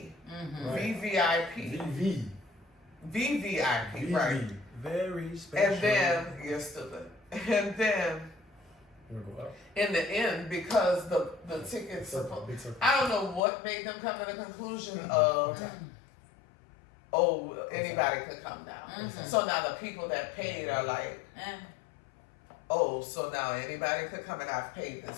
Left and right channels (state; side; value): drops out; right; at 13.4 s